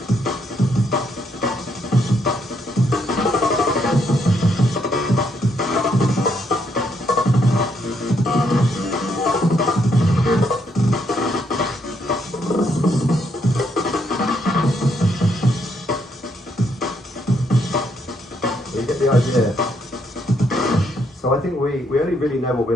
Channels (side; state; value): both; normal; correlation 0.74